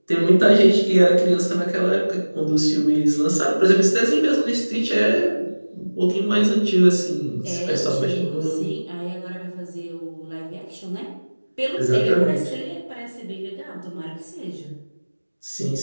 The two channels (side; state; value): both; inverted; correlation -1.00